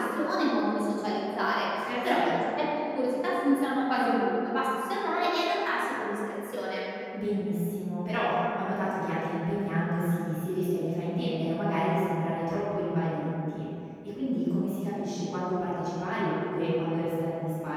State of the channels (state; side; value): identical; both; correlation 1.00